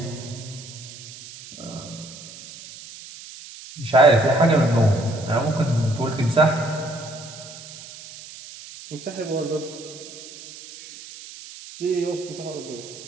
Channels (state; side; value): noise; right; hiss, 16 dB below the sound